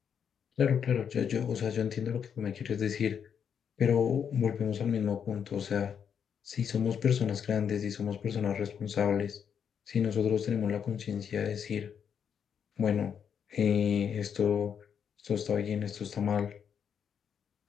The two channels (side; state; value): right; quieter; 7.7 dB